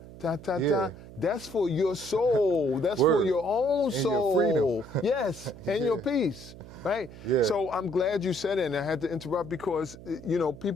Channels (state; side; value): noise; right; hum, 16 dB below the sound